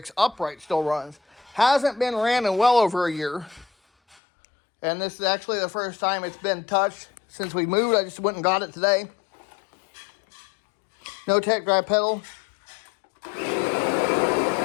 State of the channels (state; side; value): drops out; right; at 4.2 s